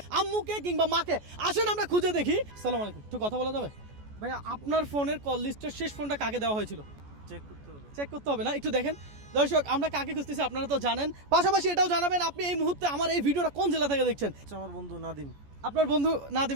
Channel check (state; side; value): late; left; 14 ms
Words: আম্মুকে কিংবা মাকে। আসেন আমরা খুঁজে দেখি। আসসালামু আলাইকুম, একটু কথা বলা যাবে ভাইয়া? আপনার ফোনের কল লিস্টের শেষ ফোনটা কাকে দেওয়া হয়েছিল? চেক করতে হবে না, একটু দেখেন। দর্শক, আমরা কাকে খুঁজতেছি আপনারা তো জানেন, পাশাপাশি এটাও জানাবেন আপনি এই মুহূর্তে আমার এই ভিডিওটা কোন জেলা থেকে দেখছেন। আমার বন্ধু নাদিম। আপনার বন্ধু